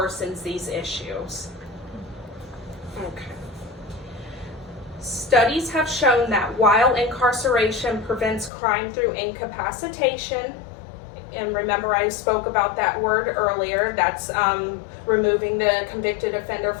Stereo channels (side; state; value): right; drops out; at 8.5 s